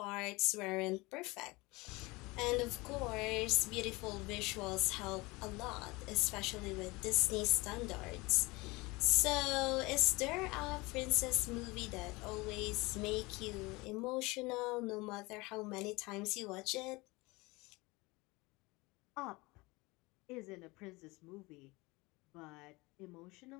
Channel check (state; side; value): quieter; right; 23.6 dB